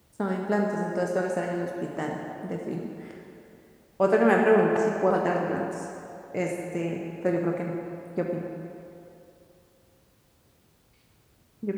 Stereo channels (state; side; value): identical; both; correlation 1.00